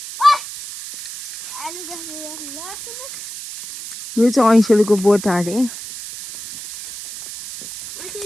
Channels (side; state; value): right; noise; hiss, 11 dB below the sound